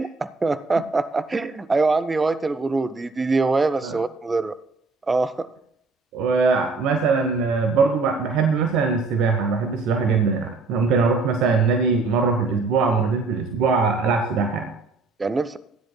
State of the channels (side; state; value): left; quieter; 3.9 dB